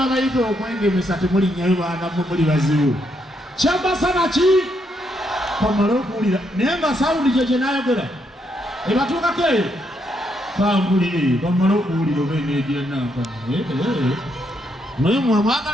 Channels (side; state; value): both; normal; correlation 0.77